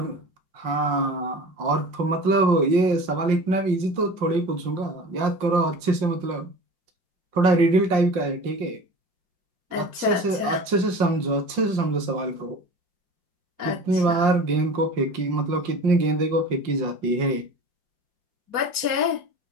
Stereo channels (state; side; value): late; left; 5.6 ms